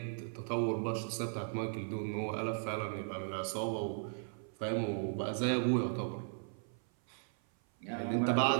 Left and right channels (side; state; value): left; silent; 53 dB below the other